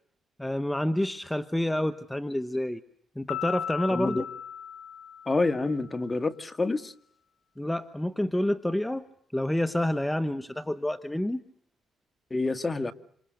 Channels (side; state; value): both; normal; correlation 0.97